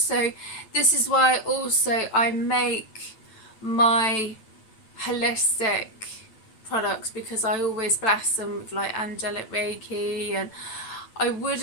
this is why also I make my holistic products, because I always bless them with like angelic Reiki, and I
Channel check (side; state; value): right; late; 9.0 ms